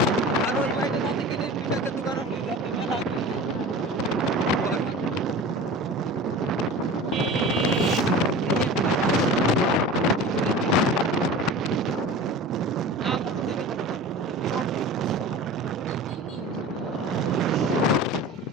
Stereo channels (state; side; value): normal; both; correlation 0.36